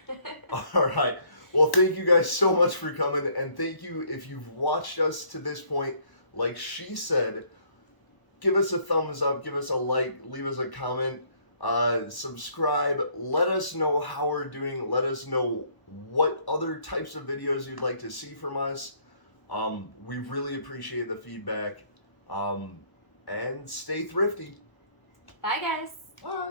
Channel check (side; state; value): right; late; 1.0 ms